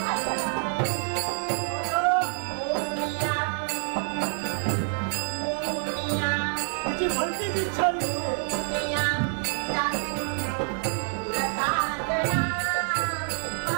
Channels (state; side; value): silent; left; 60 dB below the other